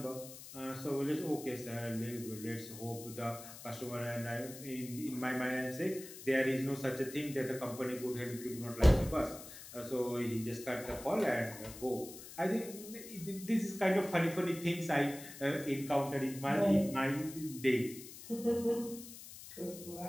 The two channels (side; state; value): left; noise; hiss, 14 dB below the sound